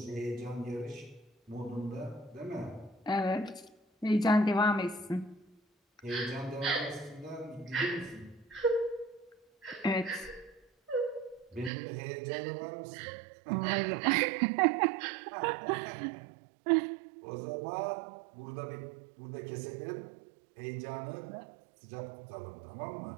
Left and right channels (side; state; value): left; drops out; at 11.7 s